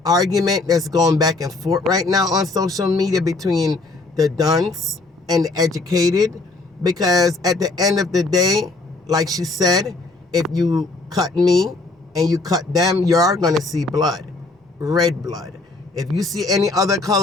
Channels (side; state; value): right; quieter; 3.3 dB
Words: argument that's going back and forth right now on social media between the dunce and the educated. Because at the end of the day, like she said, if you cut me and you cut them, you are going to see blood, red blood. If you see any other